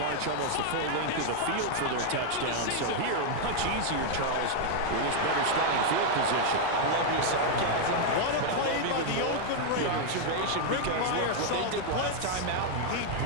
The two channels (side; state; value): both; different; correlation 0.00